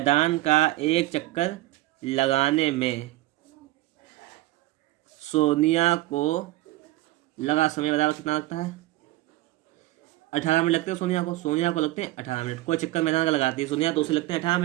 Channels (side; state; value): left; quieter; 17.6 dB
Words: लगाने में सोनिया को लगा समय बराबर कितना लगता है? 18 मिनट लगते हैं सोनिया को लगते हैं 18 मिनट। कोई चक्कर मैदान का लगाती है सोनिया तो उसे लगते हैं 18